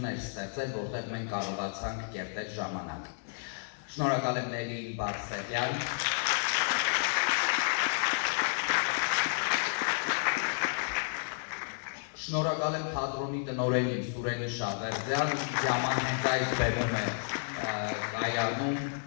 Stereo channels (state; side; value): silent; right; digital silence